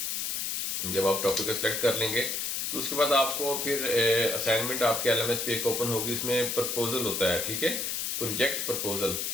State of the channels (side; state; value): left; noise; hiss, 1 dB below the sound